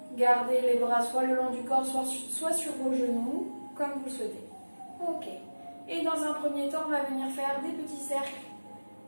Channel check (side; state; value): both; inverted; correlation -1.00